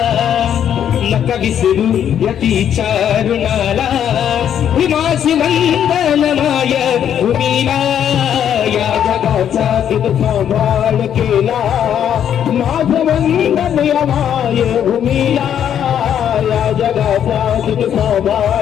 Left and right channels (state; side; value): quieter; right; 9.4 dB